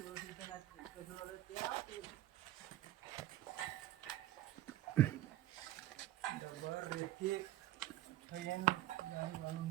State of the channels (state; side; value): quieter; left; 14.5 dB